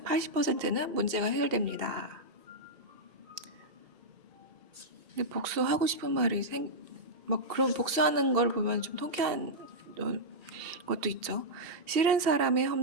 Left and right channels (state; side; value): late; left; 6.3 ms